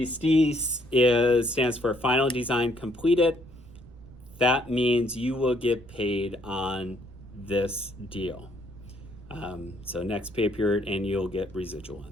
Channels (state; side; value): noise; right; rumble, 20 dB below the sound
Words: stands for Final Design Completed. That means you will get paid on this deal. So next pay period, and you'll get residual